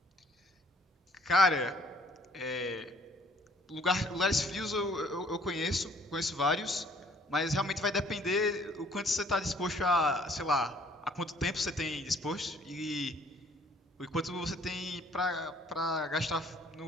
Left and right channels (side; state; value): both; normal; correlation 0.59